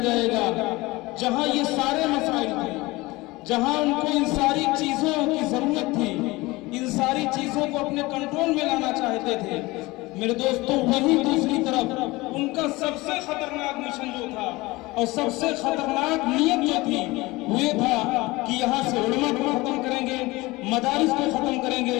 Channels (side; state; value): right; quieter; 21.4 dB